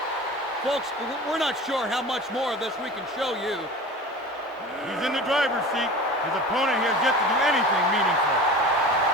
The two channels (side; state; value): both; normal; correlation 0.36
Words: Folks, we're not sure how much more of this we can show you. He's in the driver's seat. His opponent has yet to do anything meaningful.